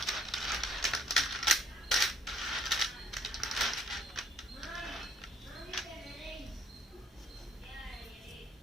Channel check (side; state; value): both; normal; correlation 0.62